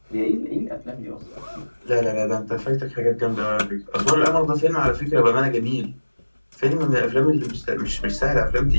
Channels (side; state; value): both; inverted; correlation -1.00